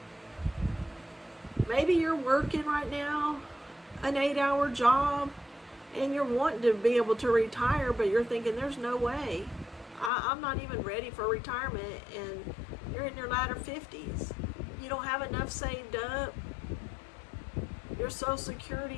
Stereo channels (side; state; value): right; drops out; at 10.1 s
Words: Maybe you're working right now an 8-hour job and you're wanting to be able to retire, but you're thinking there's no way. I'm not even ready for retirement, and you're in your latter 50s. You don't have enough saved up. Your Social